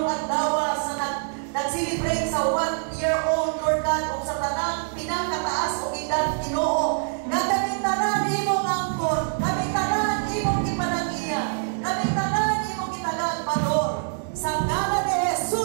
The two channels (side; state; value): left; silent; digital silence